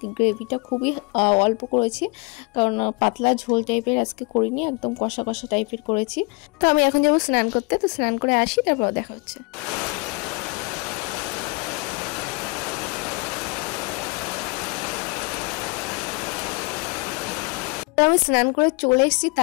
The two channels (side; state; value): right; quieter; 29.7 dB